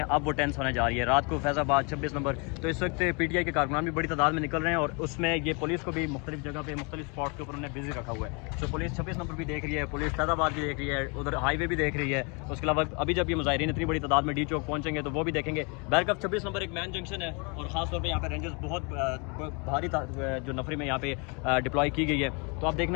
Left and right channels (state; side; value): quieter; right; 32.8 dB